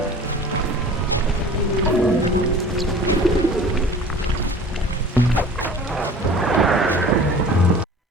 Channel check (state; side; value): normal; both; correlation 0.43